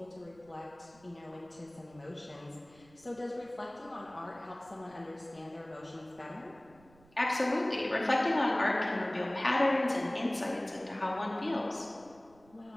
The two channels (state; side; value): noise; right; rumble, 27 dB below the sound